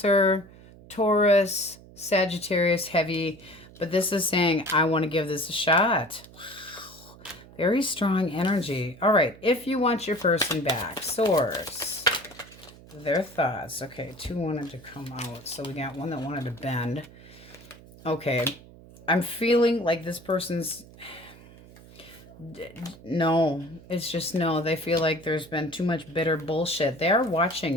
Taurus, Sagittarius, heavy. But this is saying, I want to give this a shot. Wow. Very strong energy. All right. If you want your person back, Source. Their thoughts. Okay, 2 wanted to come out. So we got 1 that wanted to bend. Okay. I'm feeling like this person's... No. It's just no. They feel like there's been too much bitter bullshit. They are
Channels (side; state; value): right; noise; hum, 21 dB below the sound